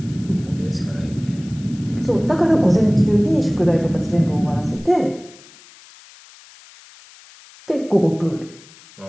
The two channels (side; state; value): left; noise; hiss, 23 dB below the sound